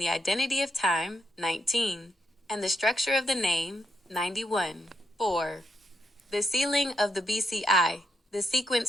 identity of time, 19, and the structure of the name, 91. 4. The sealing of the BCI, the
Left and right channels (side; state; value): both; normal; correlation 0.81